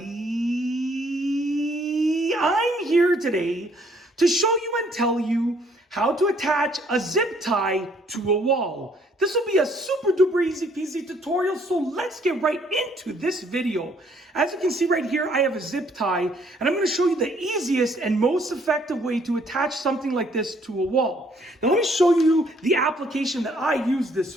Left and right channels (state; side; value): normal; both; correlation 0.64